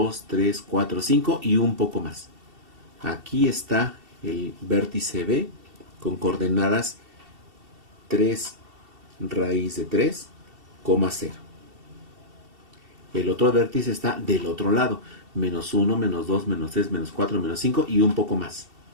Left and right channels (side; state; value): left; late; 2.7 ms